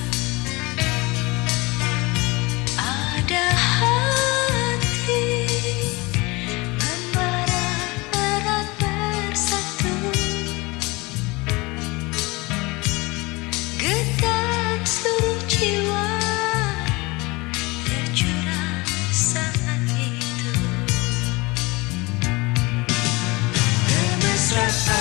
Ada hati membara erat bersatu, getar seluruh jiwa tercurah saat itu.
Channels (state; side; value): quieter; right; 24.2 dB